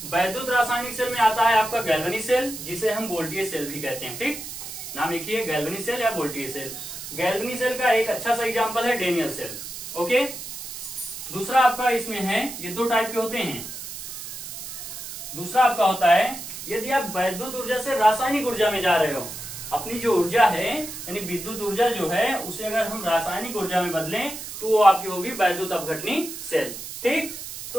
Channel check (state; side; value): noise; right; hiss, 9 dB below the sound